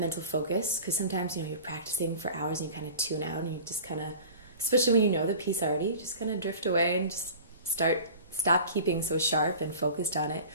focus because sometimes, you know, you're practicing for hours and you kind of tune out and you just kind of, especially when you know the piece already, you just kind of drift away and just stop keeping so sharp and focused on it.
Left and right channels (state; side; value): inverted; both; correlation -0.40